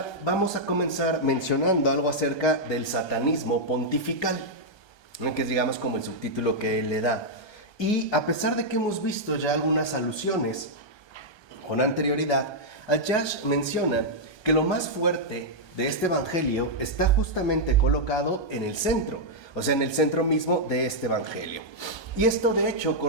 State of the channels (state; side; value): late; right; 1.2 ms